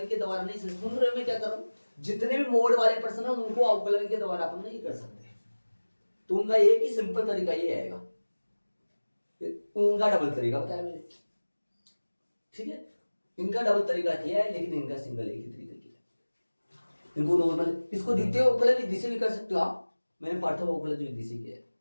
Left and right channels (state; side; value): inverted; both; correlation -1.00